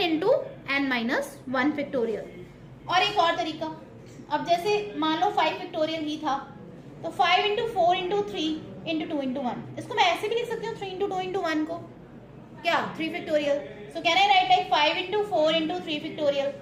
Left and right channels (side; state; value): both; identical; correlation 1.00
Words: into n minus 1 factorial. और एक और तरीका, अब जैसे मान लो 5 फैक्टोरियल ही था तो 5 इंटू 4 इंटू 3 इंटू 2 इंटू 1. इसको मैं ऐसे भी लिख सकती हूँ 3 इंटू 2 इंटू 1 को क्या? 3 factorial. So can I right like 5 into 4 into 3 factorial.